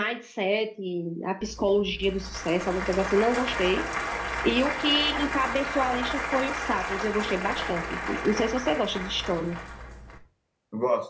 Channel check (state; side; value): identical; both; correlation 1.00